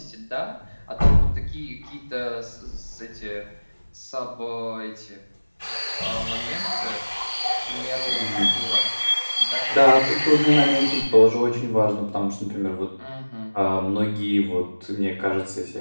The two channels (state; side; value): inverted; both; correlation -1.00